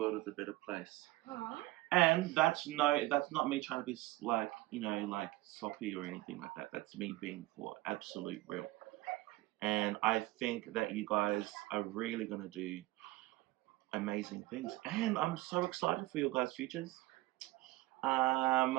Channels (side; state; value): left; quieter; 18.7 dB